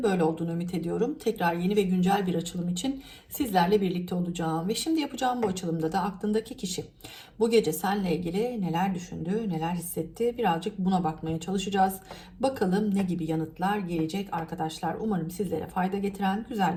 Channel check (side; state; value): both; identical; correlation 1.00